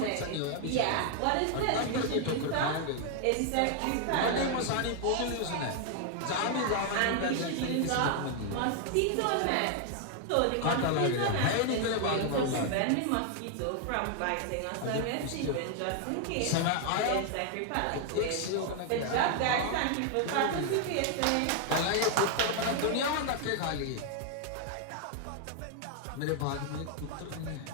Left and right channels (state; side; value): different; both; correlation 0.00